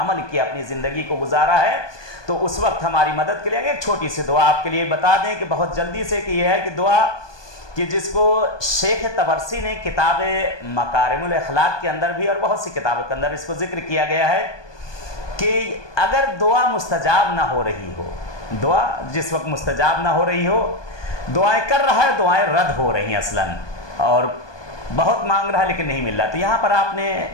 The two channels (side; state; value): right; late; 1.2 ms